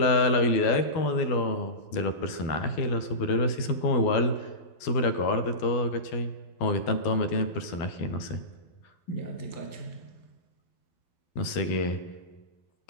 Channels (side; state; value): right; late; 12 ms